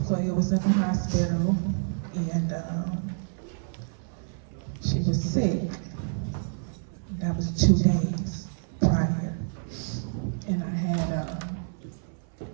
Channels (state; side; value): silent; left; 57 dB below the other